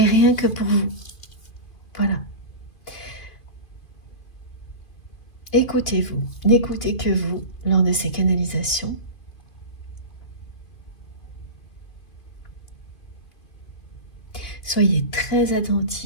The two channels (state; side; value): late; right; 2.5 ms